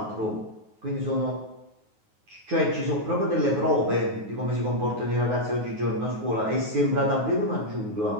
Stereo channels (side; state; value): left; late; 9.4 ms